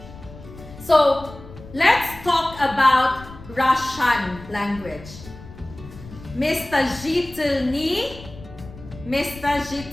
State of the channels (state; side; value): noise; left; rumble, 17 dB below the sound